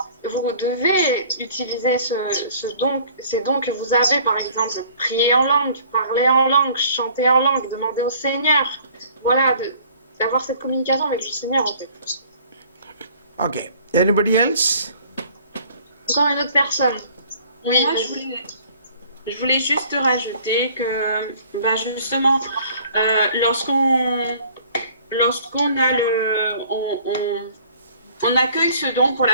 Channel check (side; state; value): both; inverted; correlation -0.54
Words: vous devez utiliser ces dons que vous avez, par exemple, prier en langue, parler en langue, chanter en langue, demander au Seigneur. Voilà, d'avoir cette communication avec le Seigneur, en fait. Okay. Anybody else? Encore une autre personne. Oui. Moi, je voulais juste rajouter que, justement, lorsqu'on a on accueille ce don pour